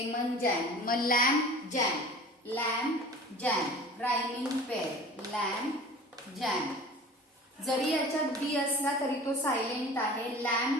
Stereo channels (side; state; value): both; normal; correlation 0.41